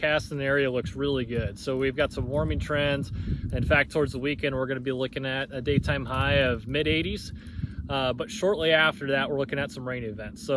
in the area looks really good. So we've got some warming trends. In fact, towards the weekend, we're going to be looking at a daytime high of mid-80s. But shortly after that, we're looking at some rain events.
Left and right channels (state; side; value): identical; both; correlation 1.00